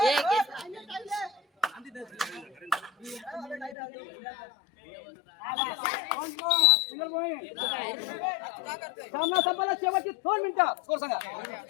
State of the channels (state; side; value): drops out; right; at 3.8 s